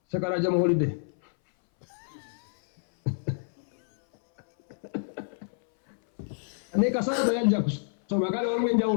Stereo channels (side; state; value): right; silent; 59 dB below the other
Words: Sekala jam holiday. Nika sasa yajja kusoma kale